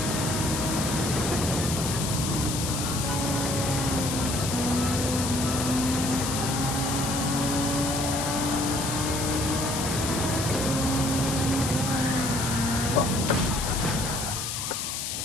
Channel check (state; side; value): noise; left; hiss, 3 dB below the sound